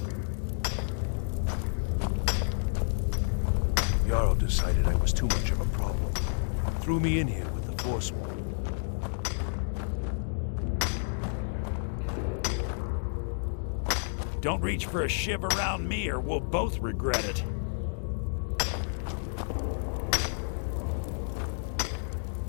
Jarl decided I was too much of a problem. Threw me in here with the Forsworn. Don't reach for a shiv around me or we'll both regret it.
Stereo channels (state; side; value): silent; right; digital silence